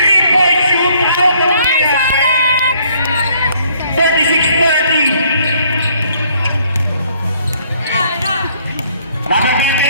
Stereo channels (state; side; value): inverted; both; correlation -0.64